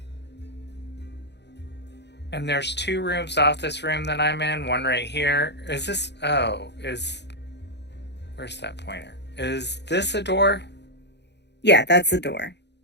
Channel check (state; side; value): late; right; 0.50 ms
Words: And there's 2 rooms off this room that I'm in. One right here. Is this... Oh, where's that pointer? Is this a door? Yeah, that's the door.